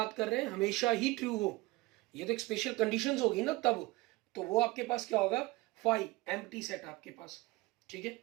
कर रहे हैं हमेशा ही ट्रू हो, ये तो एक स्पेशल कंडीशंस होगी ना तब, तो वो आपके पास क्या होगा, फाई एम्प्टी सेट आपके पास, ठीक है,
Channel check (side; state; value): left; quieter; 20.5 dB